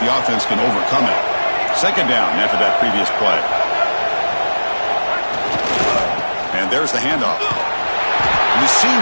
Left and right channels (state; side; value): inverted; both; correlation -1.00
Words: the offense can overcome it. 2nd down after that previous play. And there's the handoff. And the